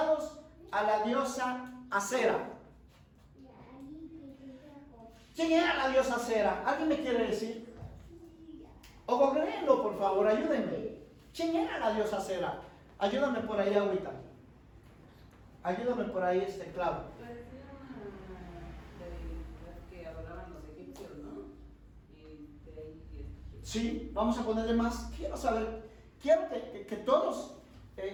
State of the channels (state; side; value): identical; both; correlation 1.00